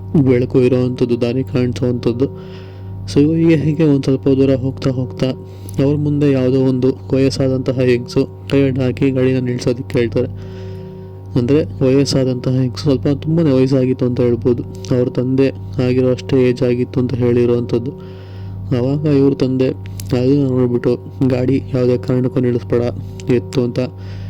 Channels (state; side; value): identical; both; correlation 1.00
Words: ಬೆಳಕು ಇರೋವಂಥದ್ದು, ದಾರಿ ಕಾಣಿಸೋವಂಥದ್ದು. ಸೊ ಹೀಗೆ ಒಂದು ಸ್ವಲ್ಪ ದೂರ ಹೋಗ್ತಾ ಹೋಗ್ತಾ ಅವ್ರ ಮುಂದೆ ಯಾವುದೋ ಒಂದು ವಯಸ್ಸಾದಂತಹ ಹೆಂಗಸು ಕೈ ಅಡ್ಡ ಹಾಕಿ ಗಾಡಿನ ನಿಲ್ಸೋದಕ್ಕೆ ಹೇಳ್ತಾರೆ. ಅಂದರೆ ವಯಸ್ಸಾದಂತಹ ಹೆಂಗಸು, ಸ್ವಲ್ಪ ತುಂಬಾ ವಯಸ್ಸಾಗಿತ್ತು ಅಂತ ಹೇಳ್ಬೋದು. ಅವ್ರ ತಂದೆ ಆಗಿರೋ ಅಷ್ಟೇ ಏಜ್ ಆಗಿತ್ತು ಅಂತ ಹೇಳಿರುವಂಥದ್ದು. ಆವಾಗ ಇವ್ರ ತಂದೆ ಅದನ್ನು ನೋಡಿಬಿಟ್ಟು ಗಾಡಿ ಯಾವುದೇ ಕಾರಣಕ್ಕೂ ನಿಲ್ಲಿಸ್ಬೇಡ ಎತ್ತು ಅಂತ